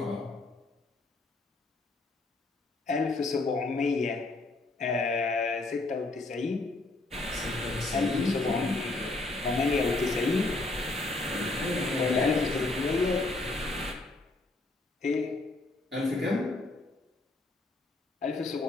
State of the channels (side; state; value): right; quieter; 3.1 dB